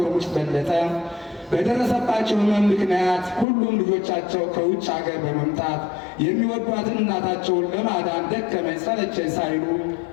ሙጭት በለጠ በደረሰባቸው ሕመም ምክንያት ሁሉም ልጆቻቸው ከውጭ ሀገር በመምጣት የሚወዷትን እናታቸውን ለማዳን ደከመኝ ሰለቸኝ ሳይሉ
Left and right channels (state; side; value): drops out; right; at 3.5 s